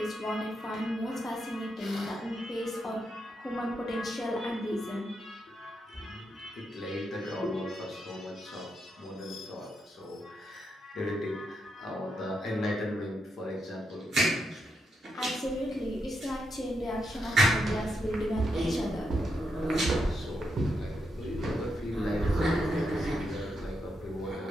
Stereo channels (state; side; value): normal; both; correlation 0.82